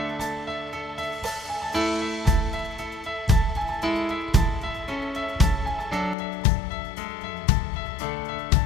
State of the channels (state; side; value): drops out; right; at 6.2 s